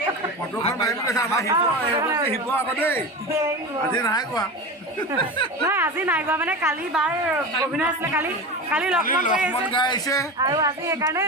ফটোখন মাৰিম কৈছে আমাৰ শিৱ আকৌ দেই আজি নাই কোৱা নহয় আজি নাই গোৱা মানে কালি বাৰ অভিনয় আছিলে কালি কালি লক্ষ্মণ কৰি লক্ষ্মণ আছে গাই আহিছে আৰু আজি সেইকাৰণে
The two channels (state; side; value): normal; both; correlation 0.26